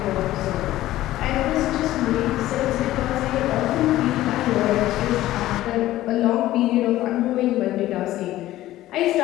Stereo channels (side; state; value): right; quieter; 15.1 dB